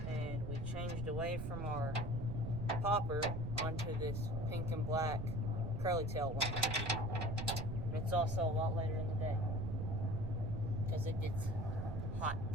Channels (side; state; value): right; noise; rumble, 4 dB below the sound